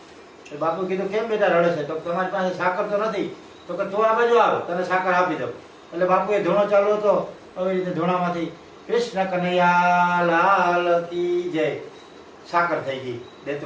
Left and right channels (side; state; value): both; identical; correlation 1.00